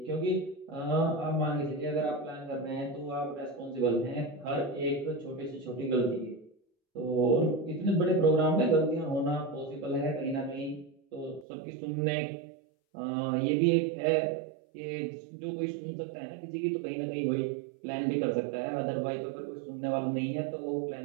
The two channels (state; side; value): drops out; left; at 11.5 s